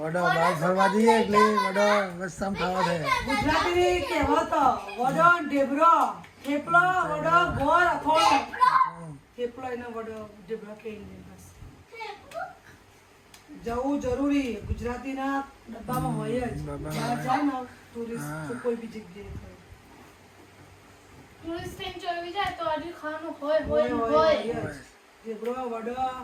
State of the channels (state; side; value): identical; both; correlation 1.00